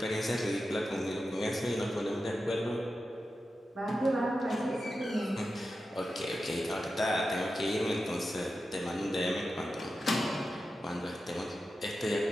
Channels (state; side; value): normal; both; correlation 0.91